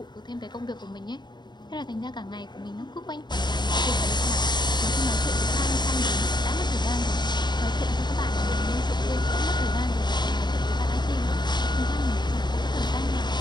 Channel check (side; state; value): right; late; 0.21 ms